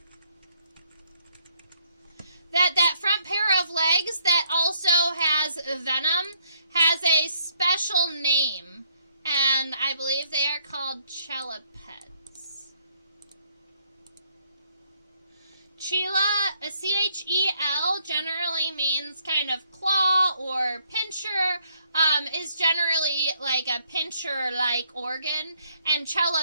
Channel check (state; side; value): inverted; both; correlation -0.69